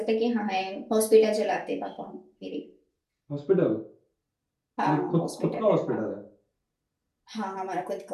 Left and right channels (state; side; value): identical; both; correlation 1.00